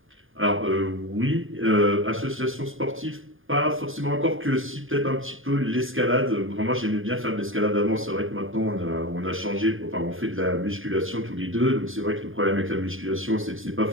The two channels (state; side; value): late; left; 0.59 ms